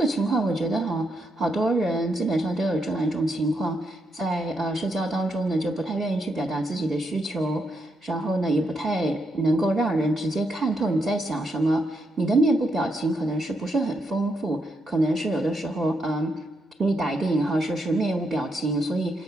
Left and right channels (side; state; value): both; normal; correlation 0.80